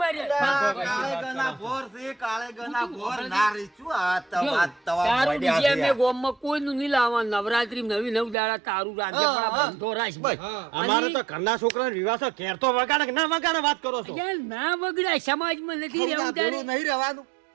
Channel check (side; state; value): left; drops out; at 8.3 s